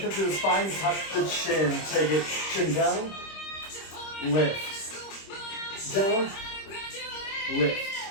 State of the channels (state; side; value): late; right; 26 ms